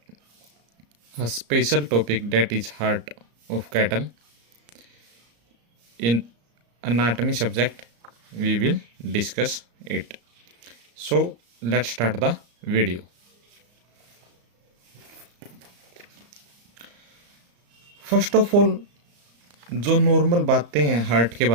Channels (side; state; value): left; late; 34 ms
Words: a special topic that is heart of cattle. In anatomy subject, we will discuss it. So let's start the video. First of all जो normal बातें हैं heart के